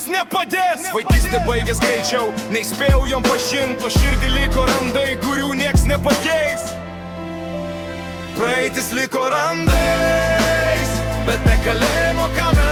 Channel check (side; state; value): both; identical; correlation 1.00